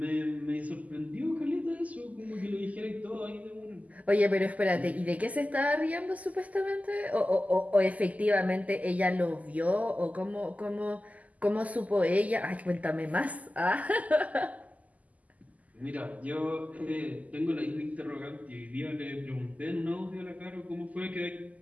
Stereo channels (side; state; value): left; late; 0.075 ms